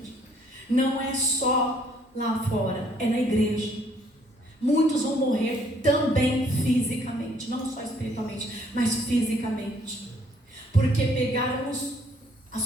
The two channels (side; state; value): both; normal; correlation 0.64